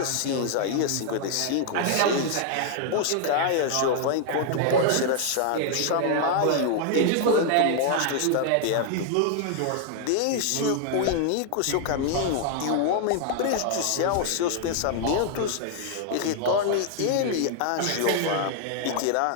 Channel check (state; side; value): different; both; correlation 0.00